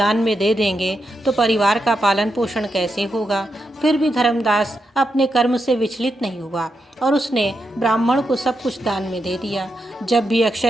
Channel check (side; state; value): both; normal; correlation 0.85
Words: में दे देंगे तो परिवार का पालन पोषण कैसे होगा। फिर भी धर्मदास अपने कर्म से विचलित नहीं हुआ और उसने ब्राह्मण को सब कुछ दान में दे दिया। जब भी